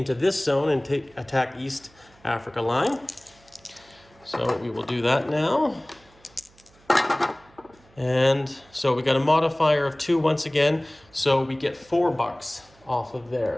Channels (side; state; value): right; noise; hum, 29 dB below the sound